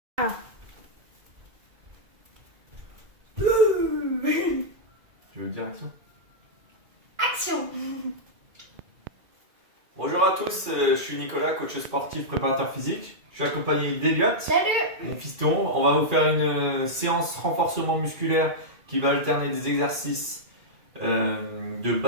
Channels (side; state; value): left; late; 2.4 ms